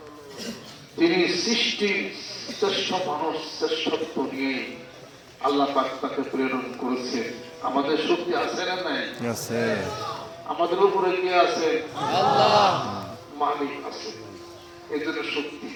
তিনি সৃষ্টির শ্রেষ্ঠ মানুষ, শ্রেষ্ঠত্ব নিয়ে আল্লাহ পাক তাকে প্রেরণ করেছেন। আমাদের শক্তি আছে না নাই? আছে। আমাদের উপরে কে আছে? আল্লাহ। মালিক আছে, এজন্য শক্তি।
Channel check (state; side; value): identical; both; correlation 1.00